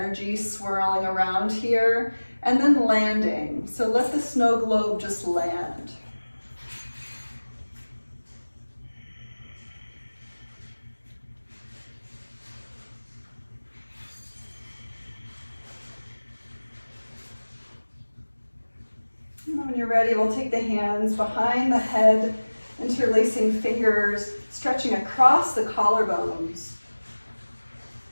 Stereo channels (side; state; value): both; inverted; correlation -1.00